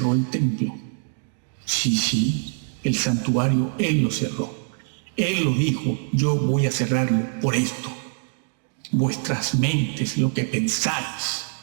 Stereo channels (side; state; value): left; silent; 63 dB below the other